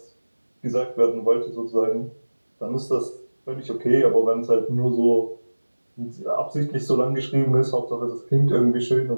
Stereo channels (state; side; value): inverted; both; correlation -1.00